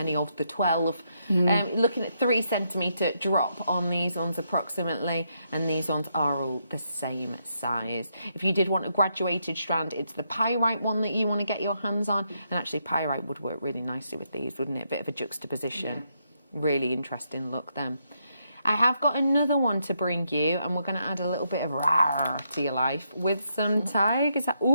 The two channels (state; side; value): inverted; both; correlation -0.79